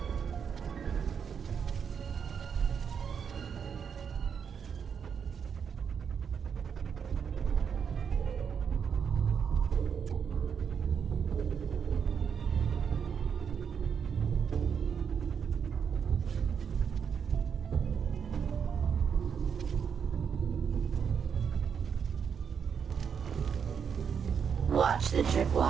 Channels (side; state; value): left; quieter; 7.0 dB